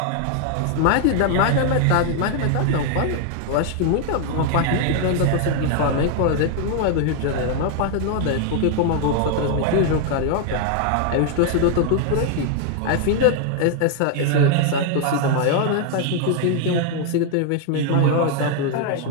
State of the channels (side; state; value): both; different; correlation 0.00